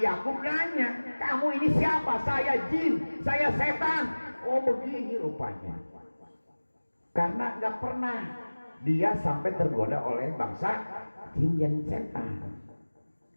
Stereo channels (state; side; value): inverted; both; correlation -1.00